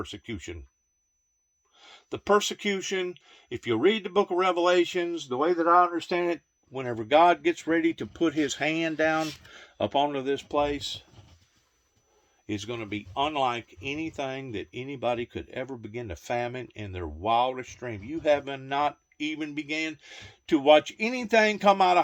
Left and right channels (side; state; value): both; identical; correlation 1.00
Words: The persecution, if you read the book of Revelations, the way that I understand it, whenever God gets ready to put his hand down up onto this place, is going to be unlike anything that anybody could ever begin to fathom in their wildest dream. You have not even began to watch anything come out